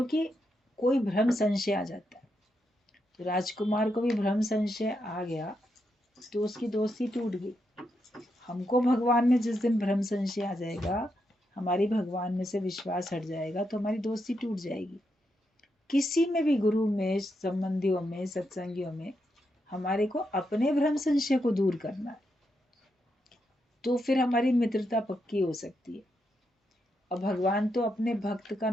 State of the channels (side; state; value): both; normal; correlation 0.83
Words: कोई भ्रम संशय आ जाता है। तो राजकुमार को भी भ्रम संशय आ गया तो उसकी दोस्ती टूट गई। हमको भगवान में जिस दिन भ्रम संशय आ जाएगा, हमारी भगवान में से विश्वास हट जाएगा, तो हमारी दोस्ती टूट जाएगी। किसी में भी, गुरु में, संबंधियों में, सत्संगियों में, हमारे को अपने भ्रम संशय को दूर करना है, तो फिर हमारी मित्रता पक्की हो सकती है। और भगवान तो अपने भक्त का